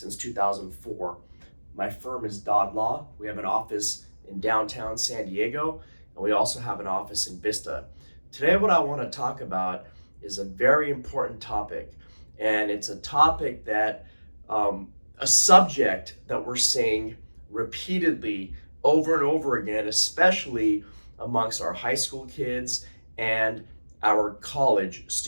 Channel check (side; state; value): both; inverted; correlation -1.00